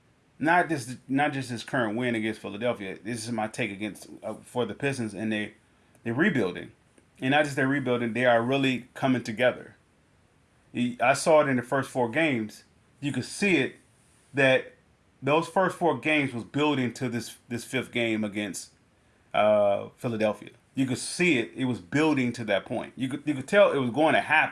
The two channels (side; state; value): both; identical; correlation 1.00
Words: not just this current win against Philadelphia. This is my take against for the Pistons, and they're rebuilding, and not just they're rebuilding. They are really coming together. I saw it in the first four games. You could see it that those first four games was building to this fifth game against Philadelphia. You could see it; it was building to that point. You could tell it was going to